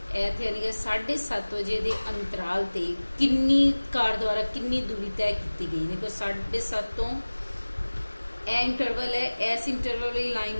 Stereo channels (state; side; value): inverted; both; correlation -1.00